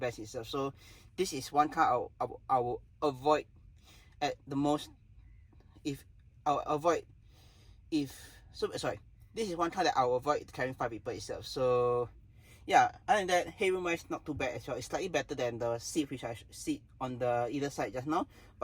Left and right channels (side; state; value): both; identical; correlation 1.00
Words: itself. So this is one car I will avoid at the most. This is one car that I will avoid carrying 5 people itself. So yeah, other than that, headroom wise not too bad as well. It's slightly better than the seat which I sit on the either side just now,